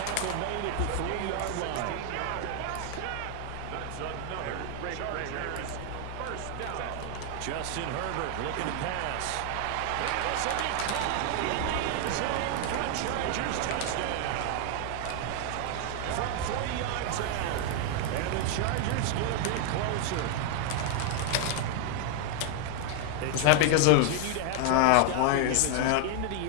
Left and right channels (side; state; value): both; different; correlation 0.00